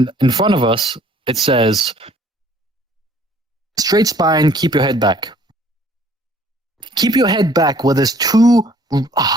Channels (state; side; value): normal; both; correlation 0.58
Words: in front of us it says, "Straight spine, keep your head back." Keep your head back. Where there's 2